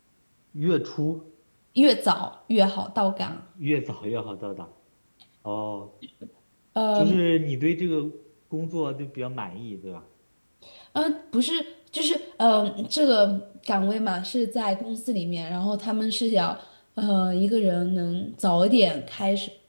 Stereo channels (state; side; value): inverted; both; correlation -1.00